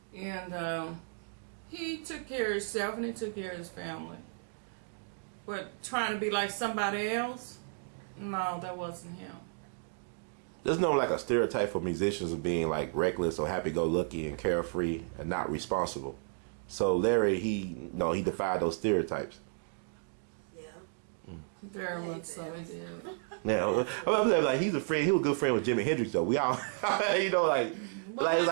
And he took care of himself and he took care of his family. But trying to be like somebody else, no, that wasn't him. There's no like a stereotype for musicians of being like reckless or happy-go-lucky and carefree and not responsible. So Larry, he defied those stereotypes. Yeah. Very much so, he did. Yeah, I'm saying, like, he's a friend. He was a good friend with Jimi Hendrix, though. We all, you know, like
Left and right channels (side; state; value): left; silent; digital silence